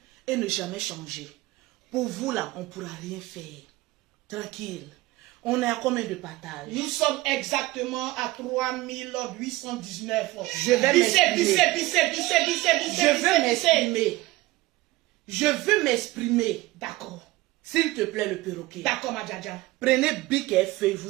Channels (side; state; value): left; quieter; 19.0 dB